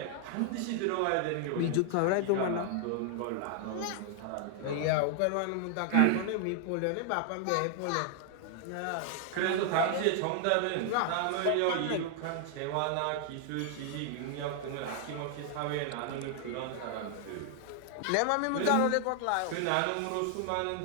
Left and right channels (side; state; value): both; different; correlation 0.00